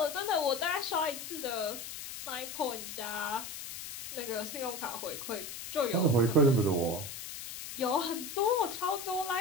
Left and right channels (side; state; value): left; noise; hiss, 9 dB below the sound